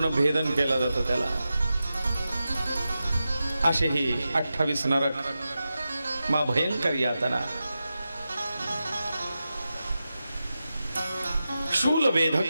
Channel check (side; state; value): both; inverted; correlation -0.92